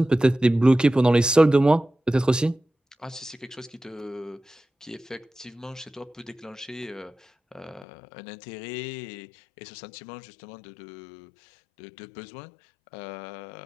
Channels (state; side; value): drops out; right; at 7.9 s